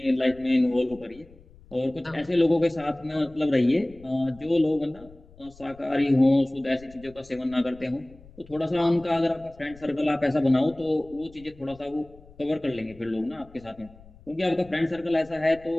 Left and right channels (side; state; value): left; noise; rumble, 23 dB below the sound